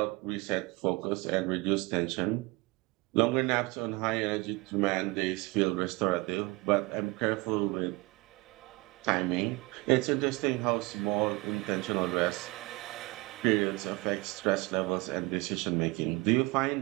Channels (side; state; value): left; quieter; 23.9 dB